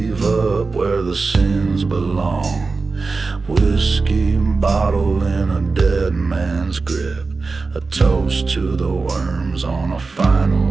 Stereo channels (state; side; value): quieter; left; 4.1 dB